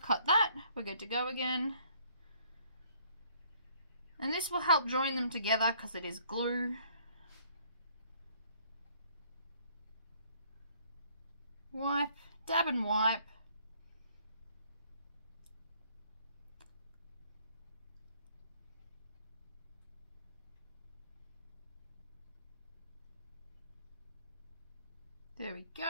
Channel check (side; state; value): both; inverted; correlation -0.62